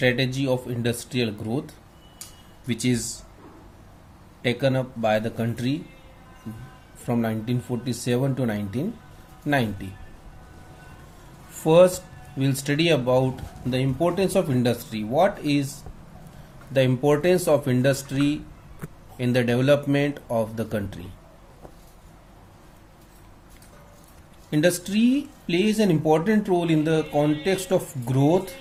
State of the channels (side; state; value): both; identical; correlation 1.00